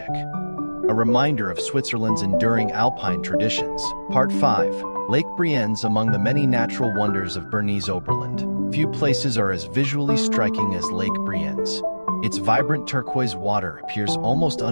a reminder of Switzerland's enduring alpine traditions. Part 5. Lake Brienz. Among the many natural wonders of Bernese Oberland, few places are as visually striking as Lake Brienz. Its vibrant turquoise water appears almost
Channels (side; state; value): both; inverted; correlation -1.00